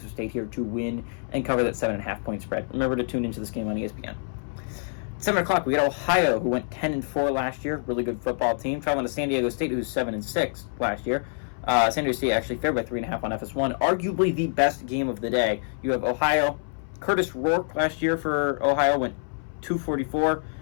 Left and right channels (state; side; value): silent; right; 61 dB below the other